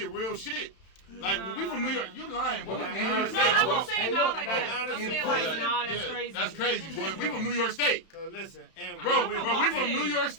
real shit. Like, when we from New York, you lying, boy. We from New No, York No, I State. won't say no like that. no, I'm saying yeah, like, nah, that's crazy. That's crazy, boy. We from New York State. Cause listen, and Bro, I'm bro, we from New York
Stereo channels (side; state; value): right; late; 31 ms